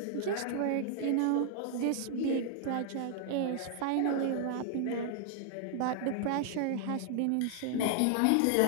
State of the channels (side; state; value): both; different; correlation 0.00